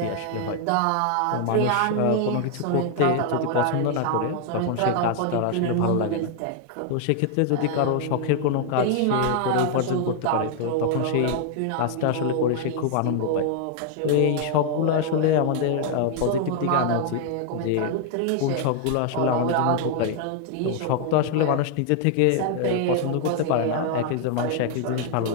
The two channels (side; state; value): both; different; correlation 0.00